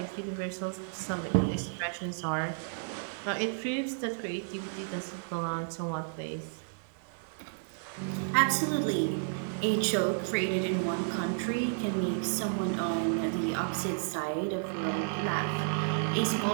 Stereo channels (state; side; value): silent; left; digital silence